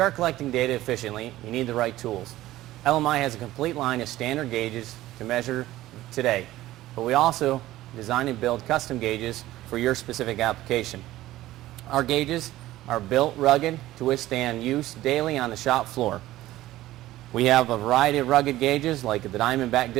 collecting data efficiently, you need the right tools. LMI has a complete line of standard gauges to measure today, but we also design and build custom gauges for your specific application. Our gauges are built rugged to withstand use daily on the shop floor. We have a variety of rugged gauges like the Diamondback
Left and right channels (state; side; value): quieter; left; 15.7 dB